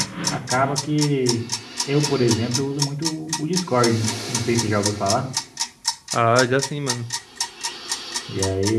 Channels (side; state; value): both; identical; correlation 1.00